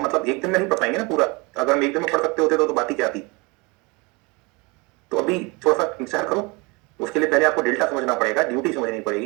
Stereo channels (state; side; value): quieter; left; 27.3 dB